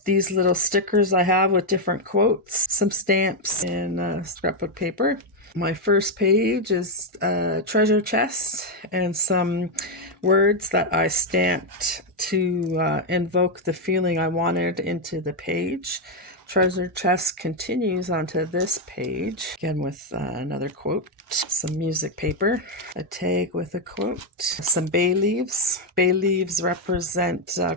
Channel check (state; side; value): normal; both; correlation 0.02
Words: These little stickers I have with different quotes, some stamps, and scrapbook paper. My first page is a treasure chest and some words that I stamped to invoke the feeling I wanted into the page. Treasure chest continues onto this page, again with another quote, some music paper, a tag with a quote, some bay leaves. Bay leaves represent